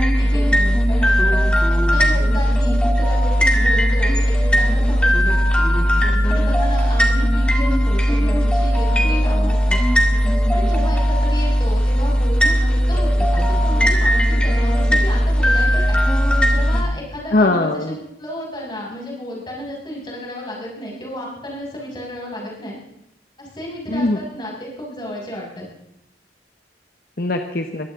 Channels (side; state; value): both; normal; correlation 0.90